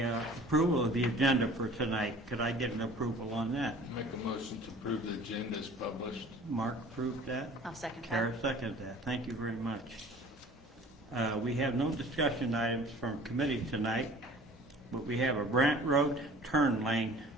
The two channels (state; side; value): normal; both; correlation 0.47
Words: of the agenda for tonight. Could I get an approval on that? Make a motion to approve the agenda as published. Mark approved that. I'll second Kara that. seconded that. Thank you very much. We have no discussion items from committee tonight, but we have a Brant Road turn lane